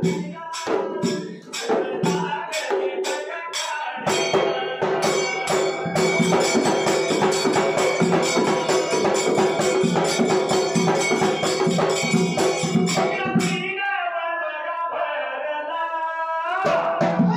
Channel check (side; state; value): both; identical; correlation 1.00